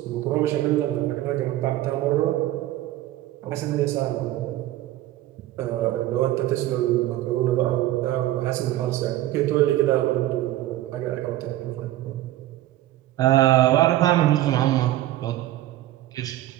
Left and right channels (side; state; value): left; quieter; 14.7 dB